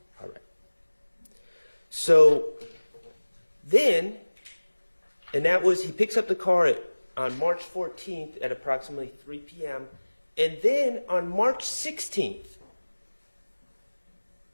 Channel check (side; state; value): both; inverted; correlation -1.00